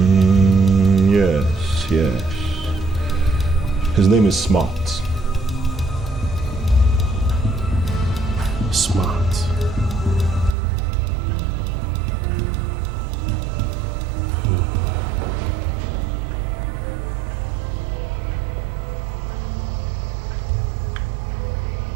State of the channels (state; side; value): drops out; left; at 10.6 s